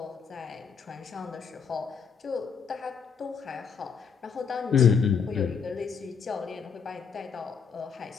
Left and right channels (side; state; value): right; quieter; 6.4 dB